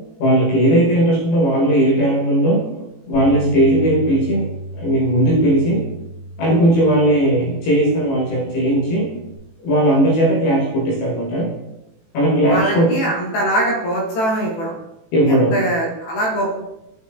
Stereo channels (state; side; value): late; right; 18 ms